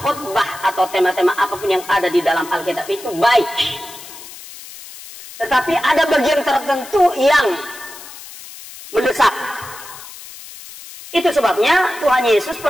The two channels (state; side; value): noise; left; hiss, 16 dB below the sound